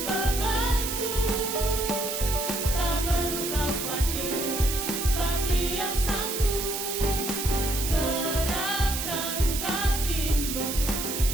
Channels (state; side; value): noise; right; hiss, 3 dB below the sound